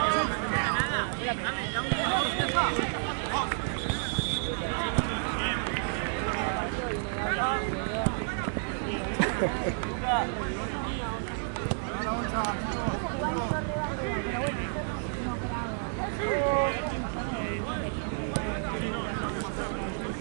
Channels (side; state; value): left; silent; 57 dB below the other